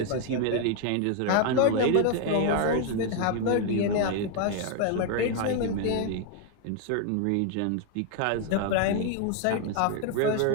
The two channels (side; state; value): both; different; correlation 0.01